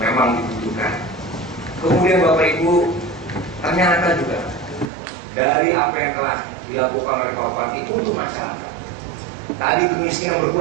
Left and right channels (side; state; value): left; drops out; at 4.9 s